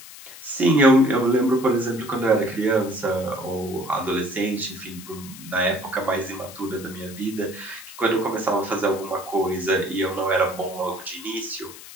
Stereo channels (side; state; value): left; noise; hiss, 16 dB below the sound